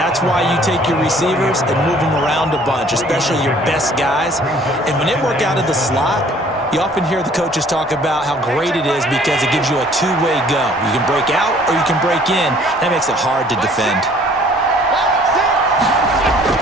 why you take your receivers and move them around a bunch, especially your best guys. And when they work out of the slot, you often hear the coaches talk about how great it is because it gives you a two-way go. You can break out or you can break in. That makes it hard to defend.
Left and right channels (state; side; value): normal; both; correlation 0.56